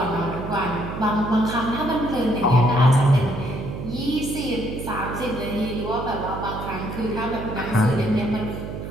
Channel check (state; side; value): noise; right; hum, 7 dB below the sound